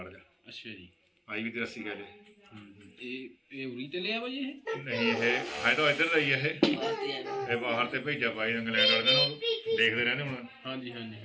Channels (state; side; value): identical; both; correlation 1.00